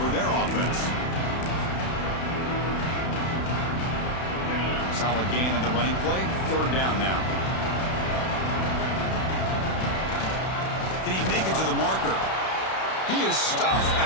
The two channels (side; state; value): right; late; 32 ms